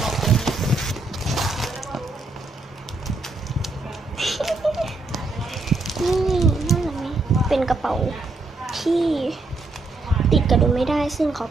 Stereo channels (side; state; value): left; quieter; 3.2 dB